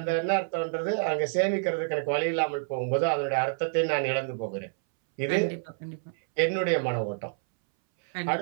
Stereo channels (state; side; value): silent; left; 59 dB below the other